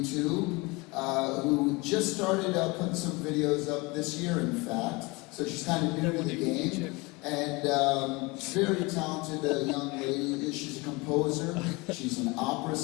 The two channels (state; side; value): quieter; right; 25.3 dB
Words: who just started putting some videos up this year, in fact. So she's kind of new to the game, and very talented young lady. She's a composer, she's an opera